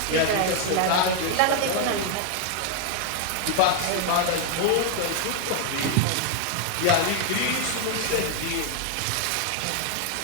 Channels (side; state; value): both; different; correlation 0.00